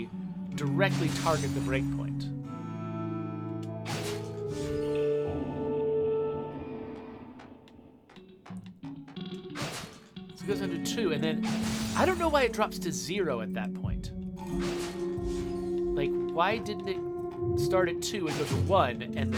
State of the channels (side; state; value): both; identical; correlation 1.00